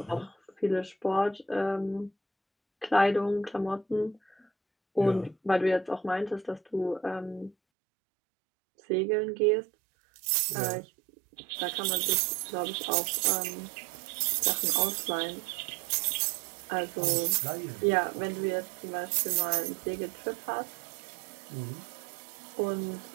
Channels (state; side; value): drops out; left; at 7.6 s